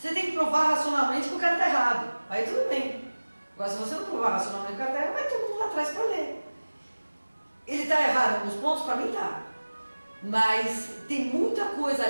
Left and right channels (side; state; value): both; inverted; correlation -1.00